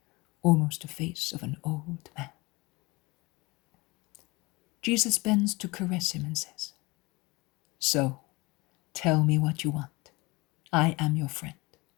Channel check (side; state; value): right; quieter; 24.1 dB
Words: almost the face of an old man. Jesus bends to caress him and says, "So, tell me what you want. I am your friend.